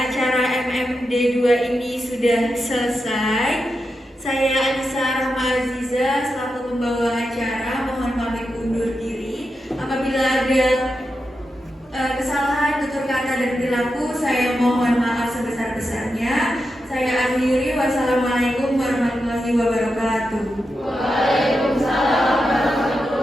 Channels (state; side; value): normal; both; correlation 0.88